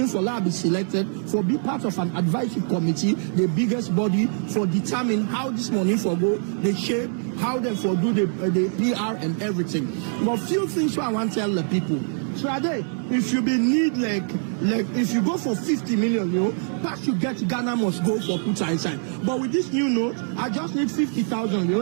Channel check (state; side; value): silent; left; 63 dB below the other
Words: for that be selected for be part of an advisory committee, the biggest body for determine how this money for go, the shape, how they for do the PR and everything. But few things I want to tell the people. So if you be need like if you go for 50 million, you know, pass you get Ghana must go for put inside. But with this new note, I just need 50,000, you